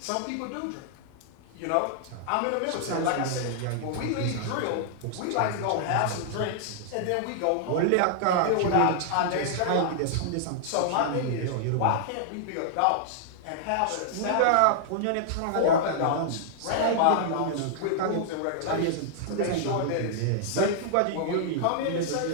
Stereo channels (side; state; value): both; different; correlation -0.01